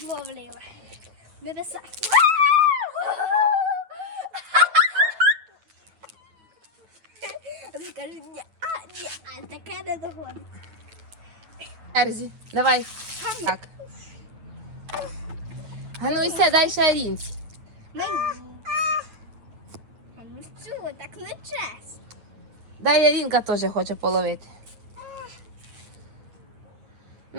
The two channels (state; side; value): late; left; 9.0 ms